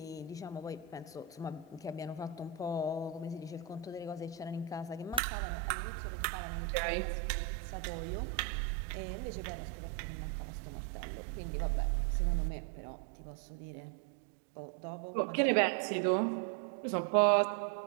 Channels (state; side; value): drops out; left; at 5.2 s